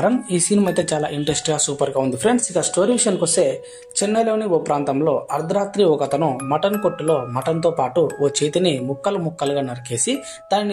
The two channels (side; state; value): both; identical; correlation 1.00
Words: ఈ సినిమా అయితే చాలా ఇంట్రెస్ట్గా సూపర్గా ఉంది ఫ్రెండ్స్. ఇక స్టోరీ విషయానికి వస్తే, చెన్నైలోని ఓ ప్రాంతంలో అర్ధరాత్రి ఒక అతను మటన్ కొట్టులో మటన్తో పాటు ఓ చేతిని ముక్కలు ముక్కలుగా నరికేసి